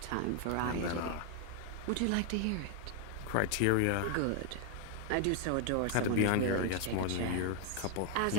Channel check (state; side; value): different; both; correlation 0.01